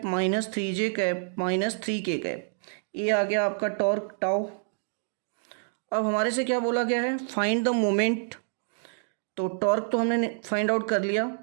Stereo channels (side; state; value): left; silent; digital silence